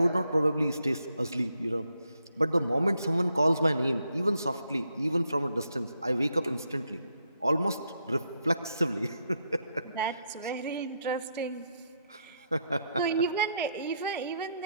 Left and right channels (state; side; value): inverted; both; correlation -0.78